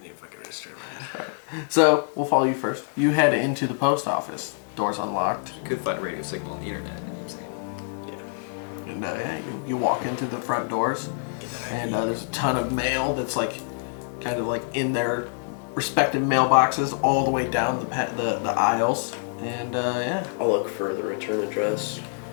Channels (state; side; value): silent; right; digital silence